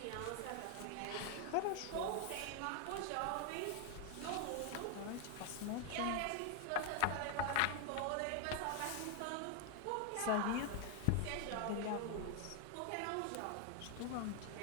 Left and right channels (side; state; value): both; different; correlation 0.01